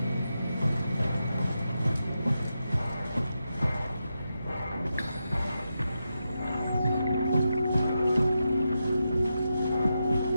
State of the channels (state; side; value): inverted; both; correlation -0.88